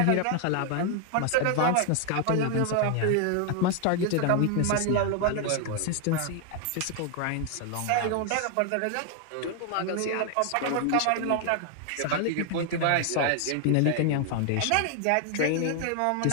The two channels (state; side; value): different; both; correlation 0.00